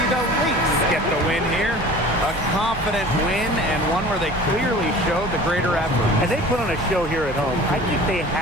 the Lynx get the win here. A confident win and one where they clearly showed the greater effort. And they put on a show here at home. I think they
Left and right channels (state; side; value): normal; both; correlation 0.42